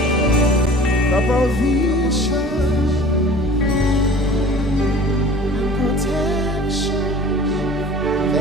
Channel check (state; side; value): normal; both; correlation 0.44